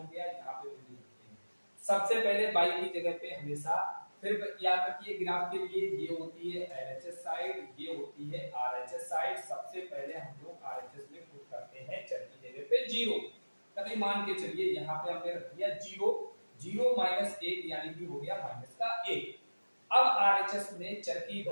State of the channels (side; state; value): both; inverted; correlation -1.00